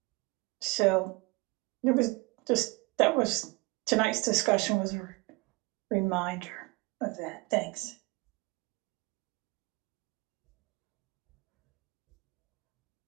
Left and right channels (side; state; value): left; quieter; 26.1 dB